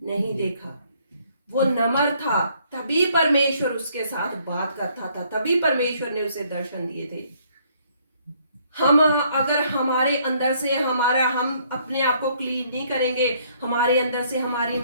नहीं देखा। वो नम्र था, तभी परमेश्वर उसके साथ बात करता था, तभी परमेश्वर ने उसे दर्शन दिए थे। हम अगर हमारे अंदर से हम अपने आप को क्लीन नहीं करेंगे, हमारे अंदर से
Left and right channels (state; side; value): inverted; both; correlation -0.65